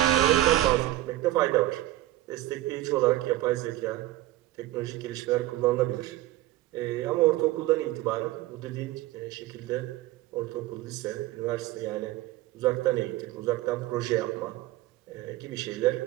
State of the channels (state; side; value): quieter; left; 15.9 dB